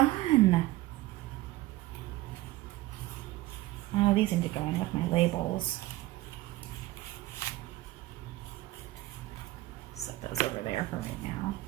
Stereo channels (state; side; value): quieter; left; 17.4 dB